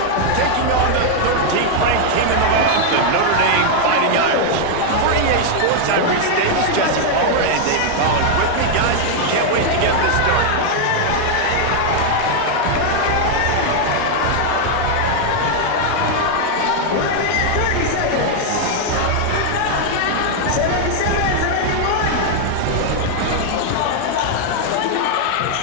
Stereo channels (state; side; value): different; both; correlation 0.00